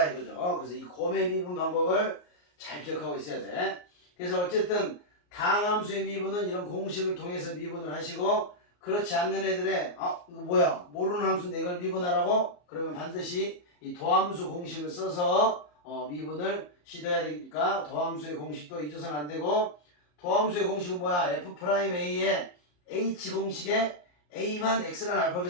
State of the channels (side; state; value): right; late; 34 ms